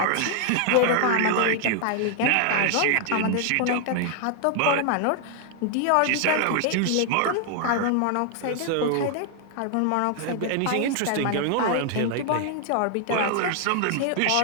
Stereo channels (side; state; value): both; different; correlation 0.00